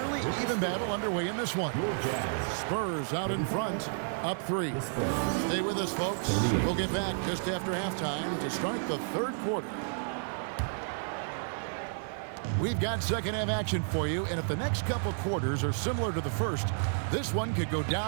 even battle underway in this one. Spurs out in front, up 3. Stay with us, folks. We'll get back just after halftime to start the third quarter. We've got second half action for you, and if the next couple quarters are similar to the first, this one could go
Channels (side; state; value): left; silent; digital silence